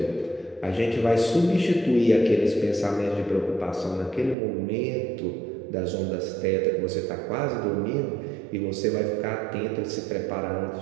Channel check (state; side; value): drops out; left; at 4.4 s